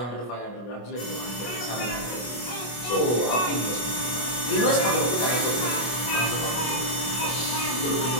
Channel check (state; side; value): late; right; 25 ms